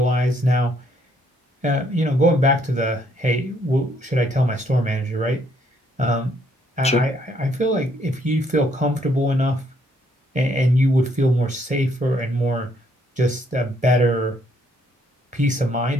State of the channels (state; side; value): normal; both; correlation 0.69